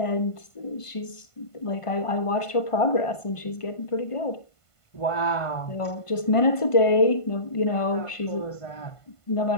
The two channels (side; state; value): right; late; 1.5 ms